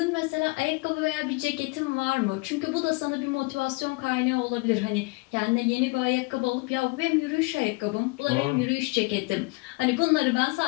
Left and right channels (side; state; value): right; quieter; 26.0 dB